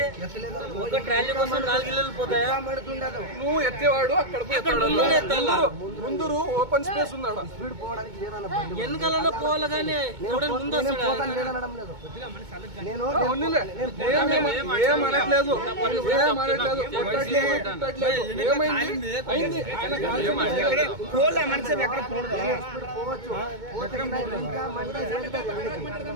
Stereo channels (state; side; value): late; left; 2.2 ms